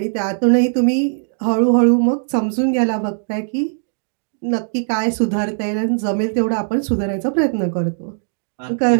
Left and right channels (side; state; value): left; silent; digital silence